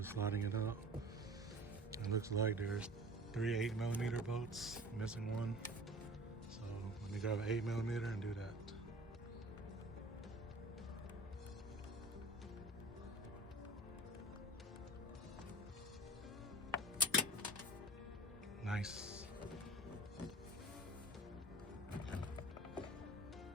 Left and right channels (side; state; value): both; normal; correlation 0.41